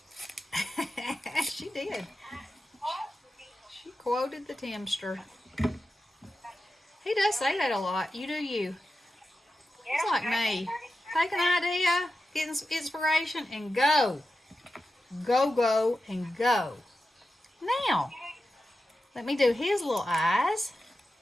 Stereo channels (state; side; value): normal; both; correlation 0.91